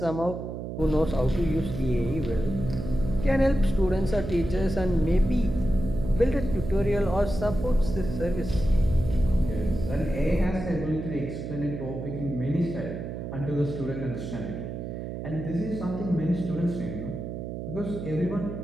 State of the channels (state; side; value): noise; right; hum, 6 dB below the sound